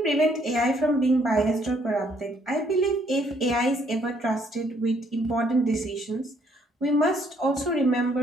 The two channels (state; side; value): normal; both; correlation 0.67